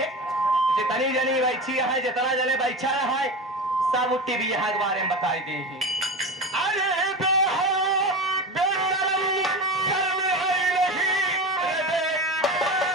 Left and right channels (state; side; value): normal; both; correlation 0.26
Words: जितनी जनी बैठी है जितना जने बैठा है सब उठी भी यहाँ के बारे में बताई दी अरे